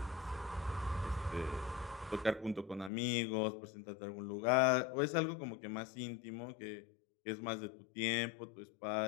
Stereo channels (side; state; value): right; drops out; at 2.9 s